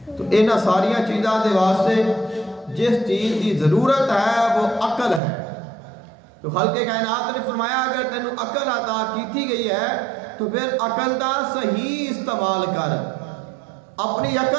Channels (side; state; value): left; drops out; at 5.2 s